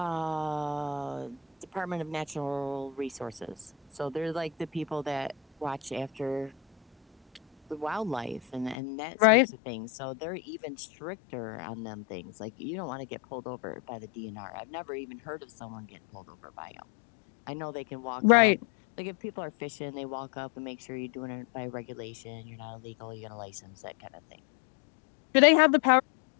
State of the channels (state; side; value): drops out; right; at 8.8 s